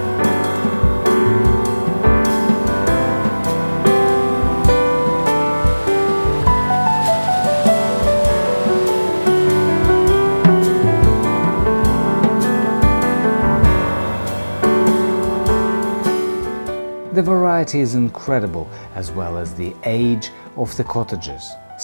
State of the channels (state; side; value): inverted; both; correlation -1.00